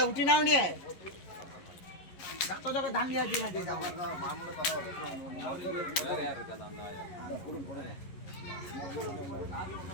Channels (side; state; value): right; late; 11 ms